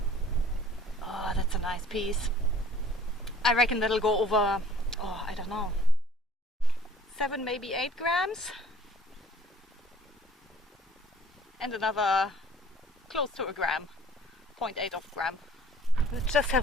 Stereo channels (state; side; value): normal; both; correlation 0.51